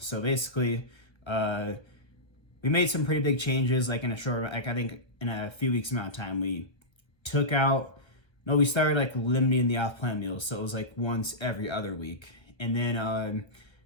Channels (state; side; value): late; right; 1.2 ms